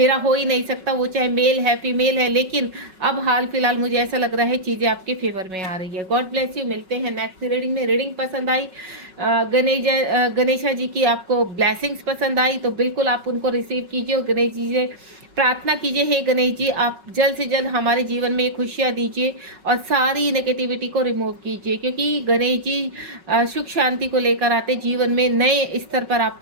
हो ही नहीं सकता, वो चाहे मेल है फीमेल है। लेकिन अब हाल फिलहाल मुझे ऐसा लग रहा है चीजें आपके फेवर में आ रही है। God bless you. मिलते हैं नेक्स्ट रीडिंग में। रीडिंग पसंद आई, गणेशा जी की आपको ब्लेसिंग्स पसंद आई तो बिल्कुल आप उनको रिसीव कीजिए, और गणेश जी से प्रार्थना कीजिए, हे गणेश जी आप जल्द से जल्द हमारे जीवन में खुशियाँ दीजिए और सारी नेगेटिविटी को रिमूव कीजिए, क्योंकि गणेश जी सुख शांति को लेकर आते, जीवन में नए स्तर पर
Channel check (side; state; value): left; late; 5.4 ms